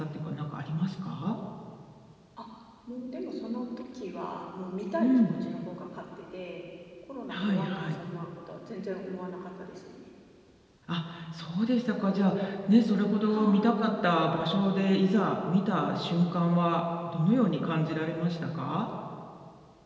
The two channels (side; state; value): both; identical; correlation 1.00